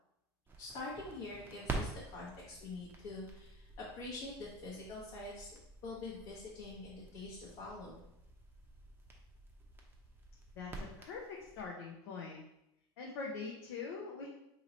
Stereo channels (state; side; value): normal; both; correlation 0.32